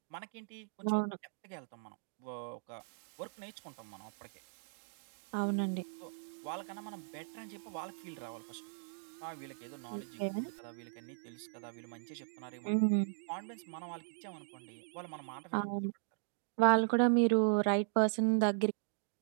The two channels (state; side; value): silent; left; digital silence